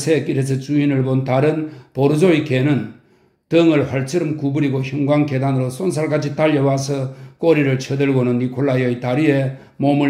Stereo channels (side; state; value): both; identical; correlation 1.00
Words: 주인을 본 다른 보르조의 개는 등을 활처럼 구부리고 형광 계단으로 쏜살같이 달려와서 꼬리를 쳐들고는 니콜라이의 다리에